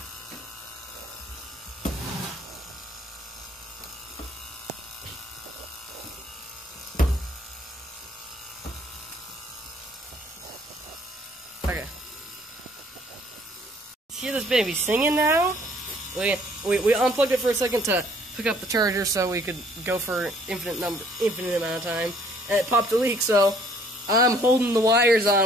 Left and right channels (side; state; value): both; normal; correlation 0.60